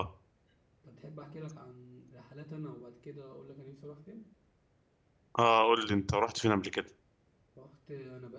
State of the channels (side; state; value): both; identical; correlation 1.00